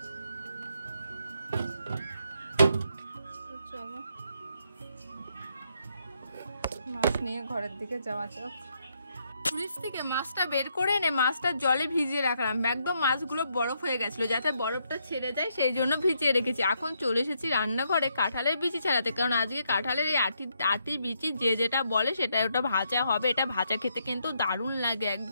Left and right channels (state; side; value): inverted; both; correlation -0.76